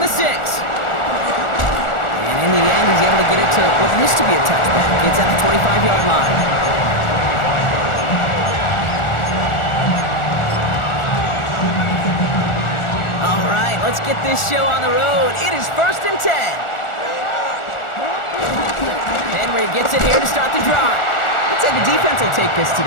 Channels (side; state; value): right; late; 1.4 ms